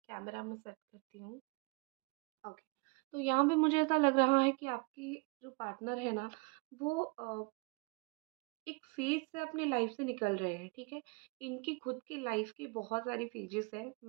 में सेट करती हूँ। ओके, तो यहाँ पे मुझे ऐसा लग रहा है कि आपकी जो पार्टनर है ना, वो एक फ़ेज़ से अपनी लाइफ़ से निकल रहे हैं, ठीक है? इनकी खुद की लाइफ़ की बहुत सारी फ़ेजेस हैं।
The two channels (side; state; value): left; quieter; 29.5 dB